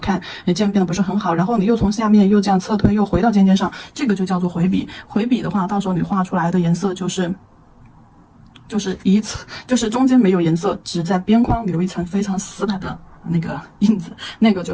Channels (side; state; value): both; identical; correlation 1.00